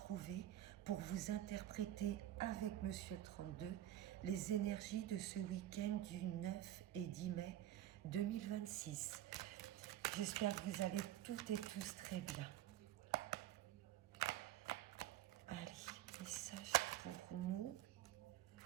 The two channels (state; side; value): quieter; left; 13.1 dB